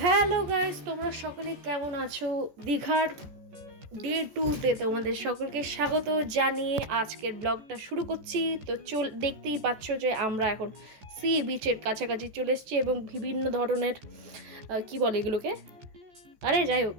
hello guys, তোমরা সকলে কেমন আছো? দীঘার ডে 2-তে তোমাদের সকলকে স্বাগত জানিয়ে আজকের ব্লগটা শুরু করছি। তো দেখতেই পাচ্ছ যে আমরা এখন সি বিচের কাছাকাছি চলে এসেছি এবং বিভিন্ন ধরনের কি বলে এগুলোকে, আরে যাই হোক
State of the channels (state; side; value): late; left; 14 ms